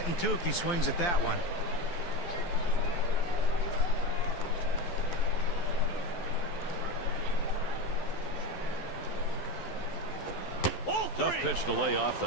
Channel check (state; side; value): late; right; 11 ms